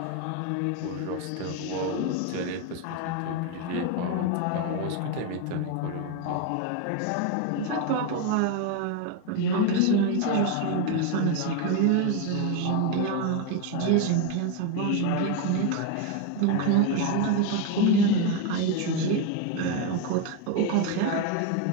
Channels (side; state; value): both; different; correlation 0.02